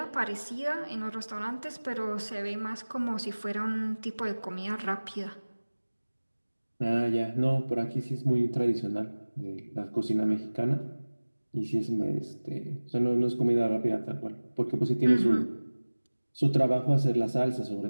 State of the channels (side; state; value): both; inverted; correlation -1.00